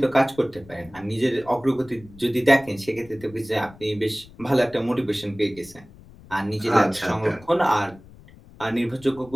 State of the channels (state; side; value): noise; left; rumble, 22 dB below the sound